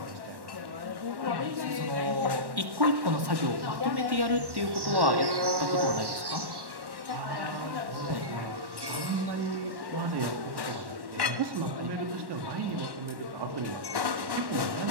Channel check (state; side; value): late; left; 1.1 ms